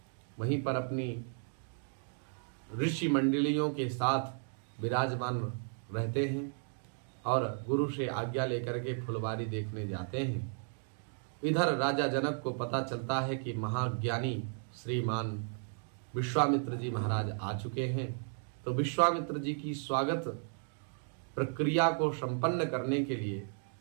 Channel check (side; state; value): left; silent; 55 dB below the other